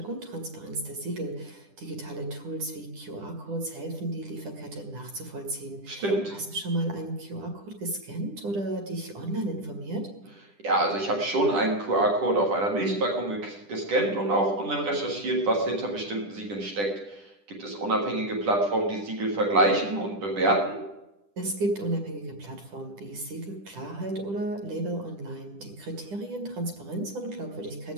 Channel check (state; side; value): late; left; 10 ms